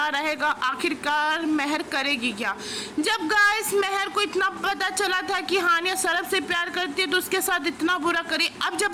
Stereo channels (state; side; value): identical; both; correlation 1.00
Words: रहेगा, आखिरकार मेहर करेगी क्या। जब गाइस मेहर को इतना पता चला था कि हानिया सरब से प्यार करती है तो उसके साथ इतना बुरा करी, अब